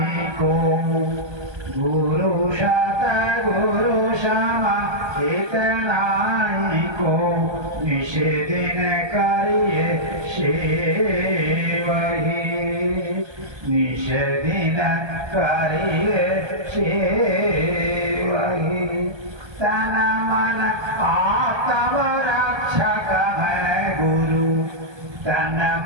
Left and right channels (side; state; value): left; late; 1.2 ms